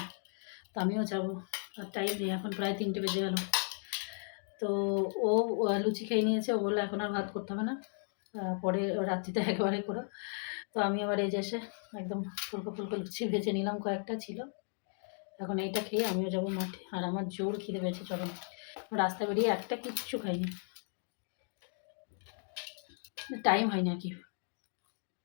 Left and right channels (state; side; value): silent; right; 54 dB below the other